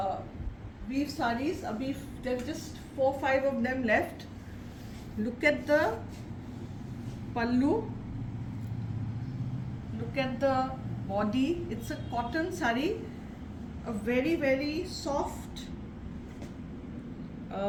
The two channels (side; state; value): both; identical; correlation 1.00